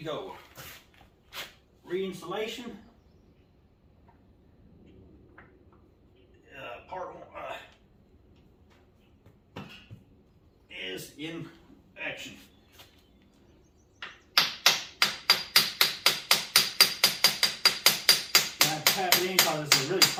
Reinstallation. Part one is in action. I have to tap it in because it's a really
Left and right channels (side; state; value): both; identical; correlation 1.00